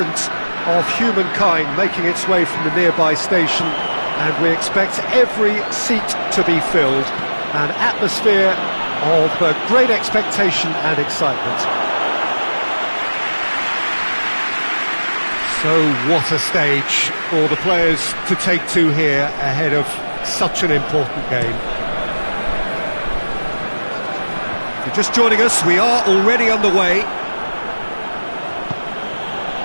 of humankind making its way from the nearby station, and we expect every seat to be filled. An atmosphere of great expectation and excitement. So what a stage for the players to take to here ahead of such an important game. If you're just joining us, we are already underway.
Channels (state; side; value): inverted; both; correlation -1.00